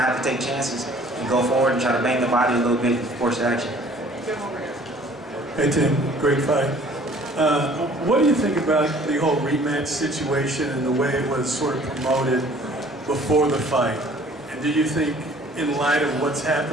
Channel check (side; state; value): both; normal; correlation 0.53